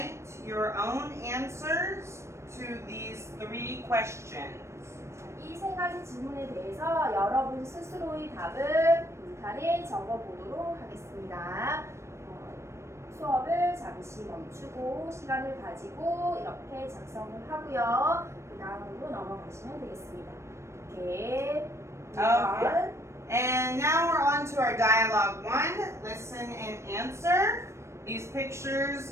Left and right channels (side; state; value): left; late; 0.13 ms